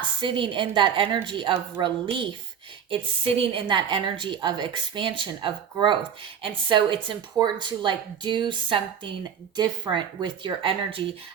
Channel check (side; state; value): left; quieter; 7.9 dB